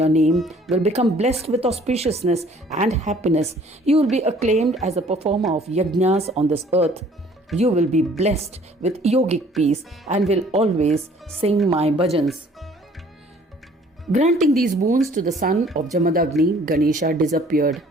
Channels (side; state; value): both; normal; correlation 0.56